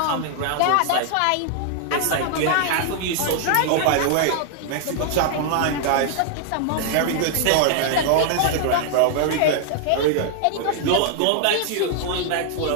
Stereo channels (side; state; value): both; different; correlation 0.00